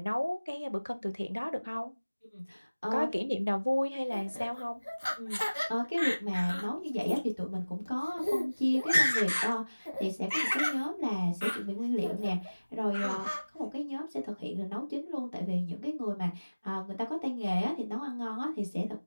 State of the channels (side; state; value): both; inverted; correlation -1.00